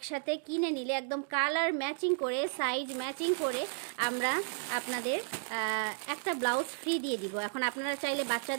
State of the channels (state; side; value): silent; left; digital silence